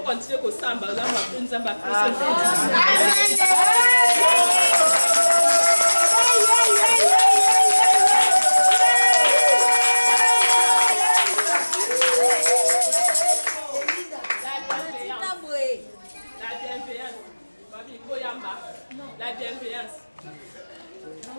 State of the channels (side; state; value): both; inverted; correlation -1.00